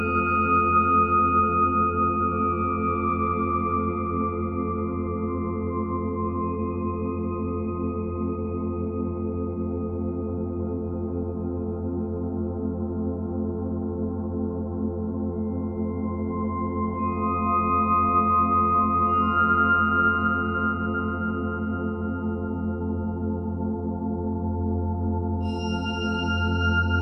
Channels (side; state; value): both; identical; correlation 1.00